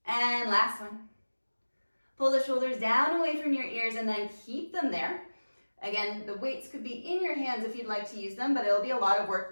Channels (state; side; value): inverted; both; correlation -1.00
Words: And last one. Pull the shoulders down away from your ears and then keep them there. Again, the weights could be in your hands if you'd like to use them, but it'll be a lot of